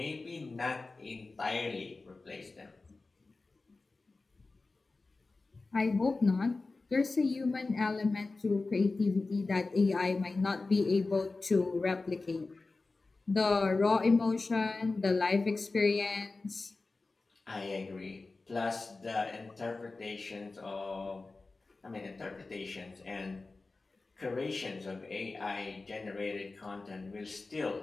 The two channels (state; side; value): quieter; right; 3.6 dB